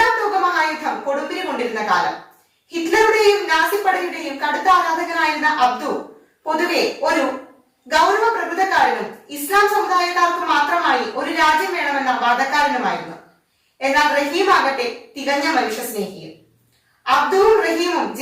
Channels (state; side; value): identical; both; correlation 1.00